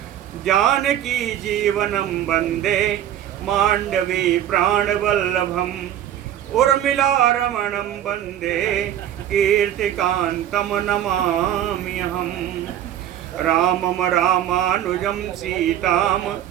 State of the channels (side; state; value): left; quieter; 11.2 dB